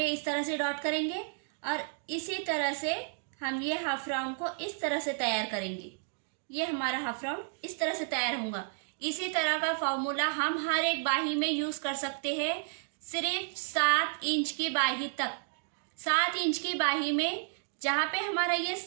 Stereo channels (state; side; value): silent; left; digital silence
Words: इस तरह से डॉट करेंगे और इसी तरह से हम ये हाफ राउंड को इस तरह से तैयार करेंगे। ये हमारा हाफ राउंड इस तरह से तैयार होगा। इसी तरह का फॉर्मूला हम हर एक बाही में यूज कर सकते हैं। सिर्फ 7 इंच की बाही तक, 7 इंच की बाही में जहाँ पे हमारा ये